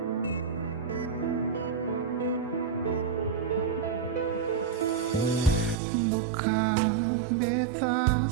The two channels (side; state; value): left; drops out; at 5.8 s